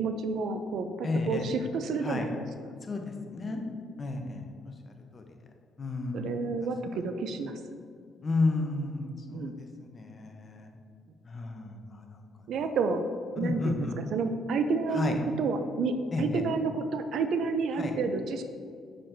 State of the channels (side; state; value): both; normal; correlation 0.68